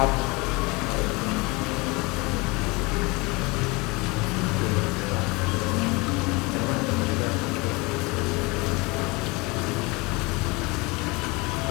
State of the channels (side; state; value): right; quieter; 25.8 dB